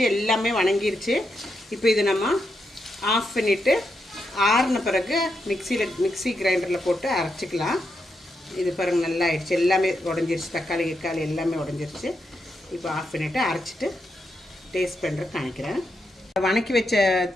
எல்லாமே வணங்கிருச்சு. இப்போ இது நம்ம ஆஃப் பண்ணிவிட்டு ஆறின பிறகு மிக்சி கிரைண்டரில் போட்டு அரைச்சிக்கலாம். இது பாருங்கள் நல்லா ஆயிடுச்சு, எல்லாமே உடஞ்சிருச்சு, தக்காளி எல்லாமே உடஞ்சிருச்சு. இப்போ ஆஃப் பண்ணிவிட்டு அரைச்சிட்டு டேஸ்ட் பண்ணுறதுக்கு காணிக்கிறேன். வணக்கி வச்ச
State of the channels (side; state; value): both; normal; correlation 0.83